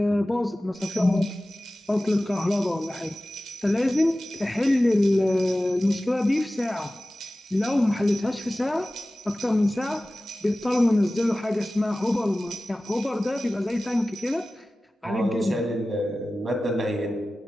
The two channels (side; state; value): both; normal; correlation 0.96